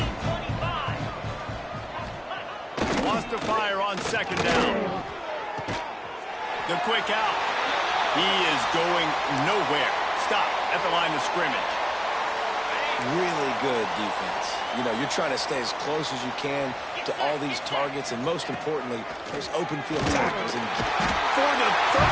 Lost to fire on second down. The quick out. He is going nowhere. Stop at the line of scrimmage. Really good defense. You know, you're trying to stay as close as you can to all these targets, and most importantly, there's open field tackles. And for the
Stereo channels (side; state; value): both; identical; correlation 1.00